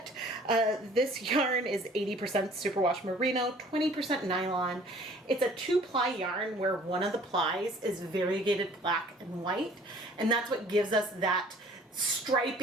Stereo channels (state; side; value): normal; both; correlation 0.53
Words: This yarn is 80% superwash merino, 20% nylon. It's a 2-ply yarn where one of the plies is variegated black and white, and that's what gives us that